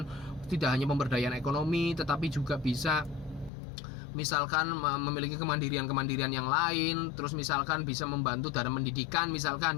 tidak hanya pemberdayaan ekonomi tetapi juga bisa misalkan memiliki kemandirian yang lain, terus misalkan bisa membantu dalam pendidikan, misalkan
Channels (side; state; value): right; drops out; at 3.5 s